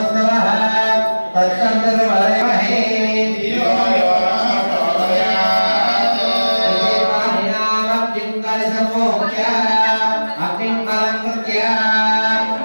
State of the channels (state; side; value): inverted; both; correlation -1.00